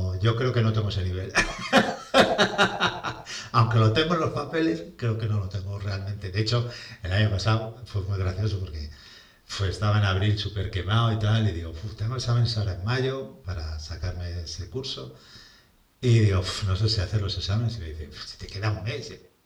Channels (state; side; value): identical; both; correlation 1.00